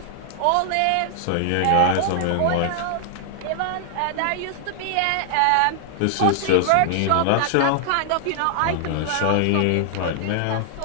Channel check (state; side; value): different; both; correlation -0.01